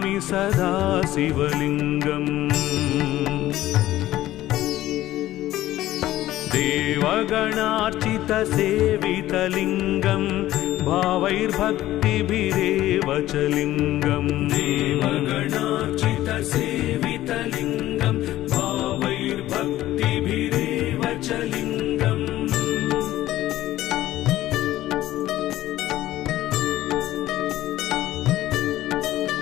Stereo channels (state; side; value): quieter; right; 14.8 dB